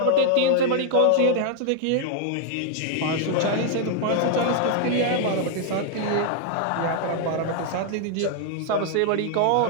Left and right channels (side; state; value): both; different; correlation 0.00